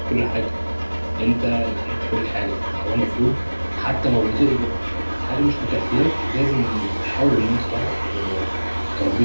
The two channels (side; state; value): both; inverted; correlation -1.00